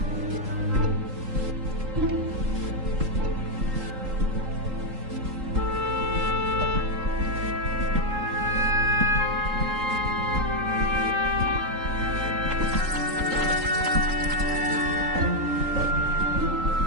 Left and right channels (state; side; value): late; left; 3.8 ms